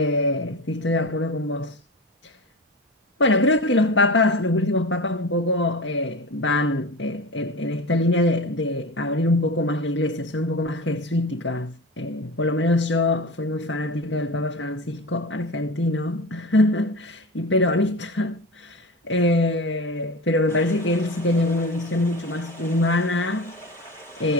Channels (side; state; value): both; normal; correlation 0.28